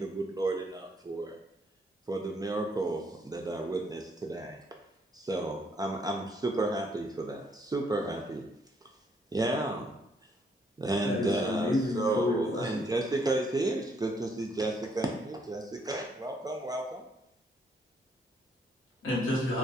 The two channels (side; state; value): both; normal; correlation 0.69